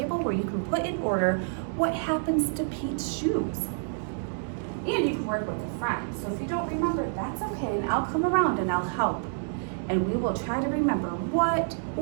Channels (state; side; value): silent; left; digital silence